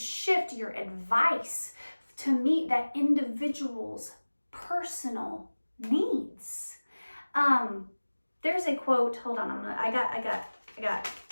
your advice to meet that individual's personal needs. There's a quote, hold on, I got,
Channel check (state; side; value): inverted; both; correlation -1.00